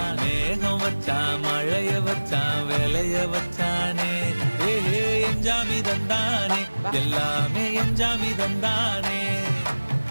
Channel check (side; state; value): both; inverted; correlation -1.00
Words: மேகம் வச்சான் மழைய வச்சான் விளைய வச்சானே ஏ எஞ்சாமி தந்தானே எல்லாமே எஞ்சாமி தந்தானே